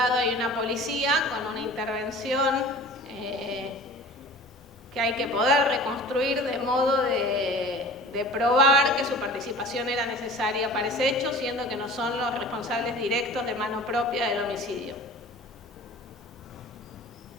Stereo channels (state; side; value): normal; both; correlation 0.43